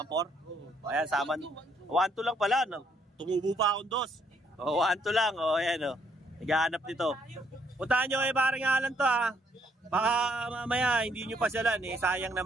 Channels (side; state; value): both; normal; correlation 0.69